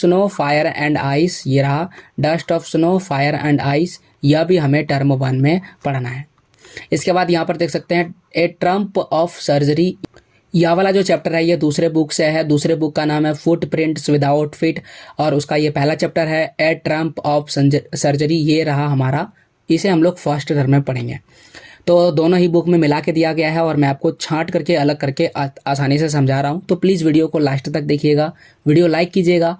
fire and ice, ये रहा dust of snow fire and ice, यह भी हमें टर्म 1 में पढ़ना है। इसके बाद यहाँ पर देख सकते हैं ए ट्रम्प ऑफ सर्जरी, यह वाला जो चैप्टर है ये दूसरे बुक से है। दूसरे बुक का नाम है फुटप्रिंट्स विदाउट फीट, और उसका ये पहला चैप्टर है ए ट्रम्प ऑफ सर्जरी, ये रहा हमारा। इसे हम लोग फर्स्ट टर्म में पढ़ेंगे। तो दोनों ही बुक में मिला के दिया गया है और मैं आपको छांट करके अलग करके आसानी से समझा रहा हूँ। तो प्लीज़ वीडियो को लास्ट तक देखिएगा, वीडियो लाइक कीजिएगा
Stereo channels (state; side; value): identical; both; correlation 1.00